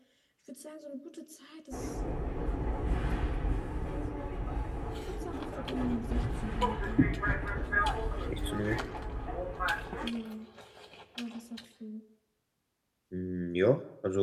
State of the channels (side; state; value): both; identical; correlation 1.00